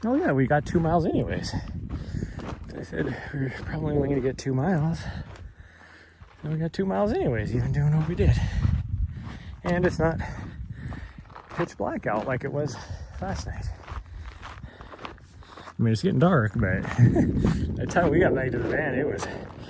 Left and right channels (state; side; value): identical; both; correlation 1.00